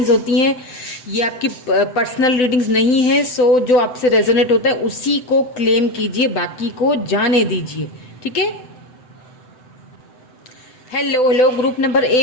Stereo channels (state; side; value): late; right; 7.9 ms